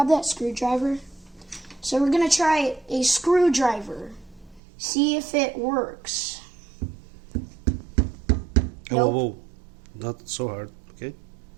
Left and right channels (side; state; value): left; drops out; at 4.6 s